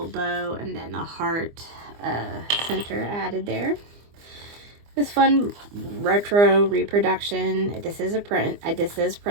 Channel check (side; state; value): left; late; 24 ms